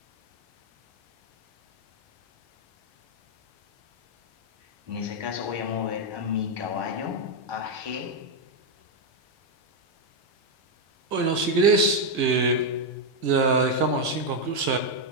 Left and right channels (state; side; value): late; left; 1.6 ms